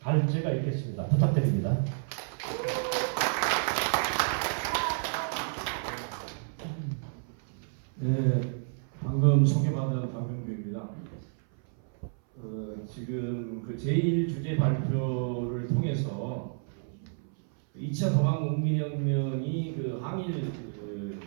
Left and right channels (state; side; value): silent; left; 58 dB below the other